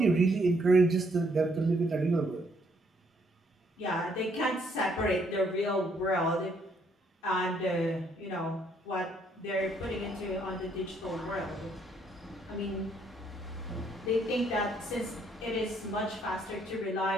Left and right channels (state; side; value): normal; both; correlation 0.69